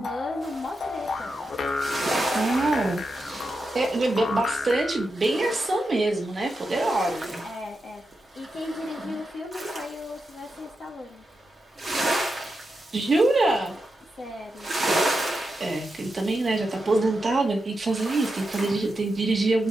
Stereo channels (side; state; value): both; normal; correlation 0.88